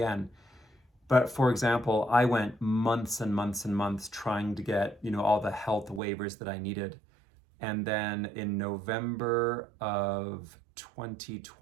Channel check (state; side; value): drops out; left; at 6.0 s